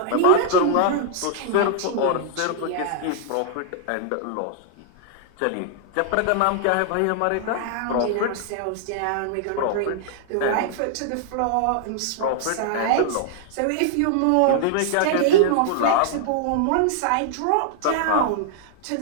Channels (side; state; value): both; different; correlation -0.01